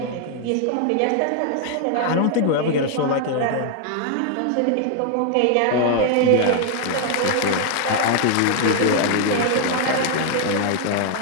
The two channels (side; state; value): both; different; correlation 0.00